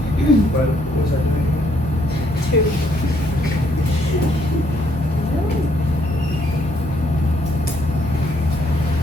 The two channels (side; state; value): both; normal; correlation 0.70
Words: What was that? 2.